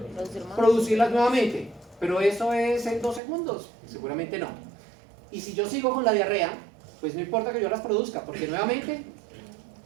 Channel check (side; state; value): left; drops out; at 3.2 s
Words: Producirlas nuevamente. Pero eso es en 2 segundos. Seguramente no. Y si yo sigo con la diarrea, pues no importa que yo las produzca, porque nuevamente...